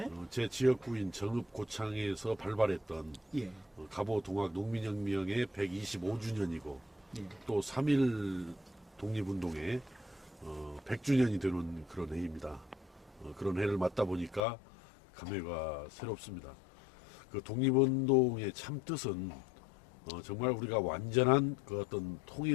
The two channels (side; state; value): right; drops out; at 14.4 s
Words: 제 지역구인 정읍 고창에서 발발했던 예. 갑오 동학 농민혁명의 125주년이고 예. 또 3.1 독립운동의 100주년이 되는 그런 해입니다. 그런 해를 맞다 보니까 감회가 새롭습니다. 그 독립운동의 참 뜻은 정말 우리가 완전한 그 어떤